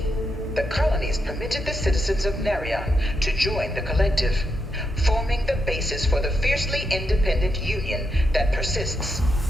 the colonies permitted the citizens of Narion to join the collective, forming the basis for the fiercely independent union that persists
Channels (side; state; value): both; normal; correlation 0.83